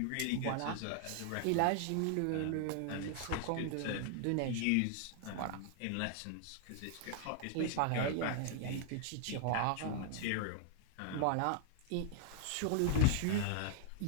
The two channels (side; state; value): both; different; correlation 0.00